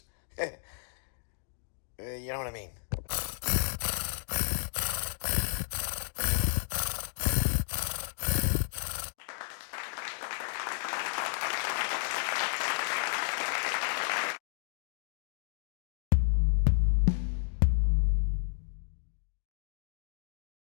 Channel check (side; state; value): right; silent; digital silence